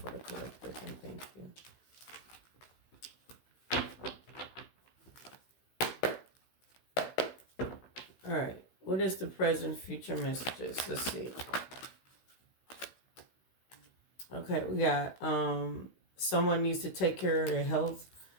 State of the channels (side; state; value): right; late; 16 ms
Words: the collective, and thank you. Alright. What is the present, future messages? Let's see. Okay, we got someone needs to take care of their health.